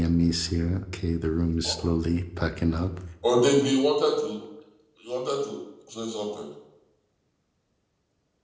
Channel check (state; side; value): identical; both; correlation 1.00